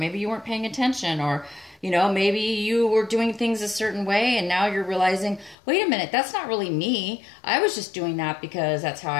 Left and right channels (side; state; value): right; drops out; at 5.6 s